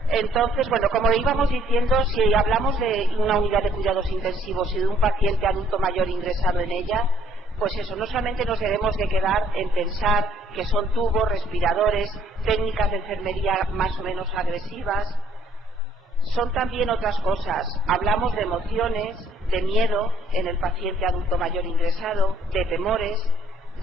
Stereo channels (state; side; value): normal; both; correlation 0.61